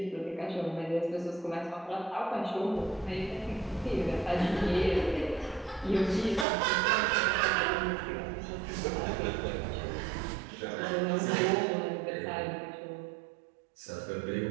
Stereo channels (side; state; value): left; drops out; at 6.5 s